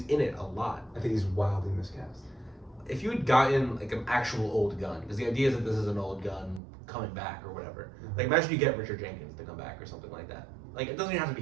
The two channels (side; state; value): left; drops out; at 6.6 s